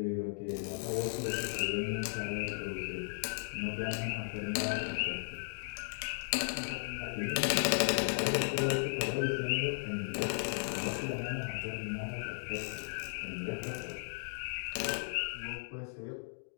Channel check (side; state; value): right; silent; digital silence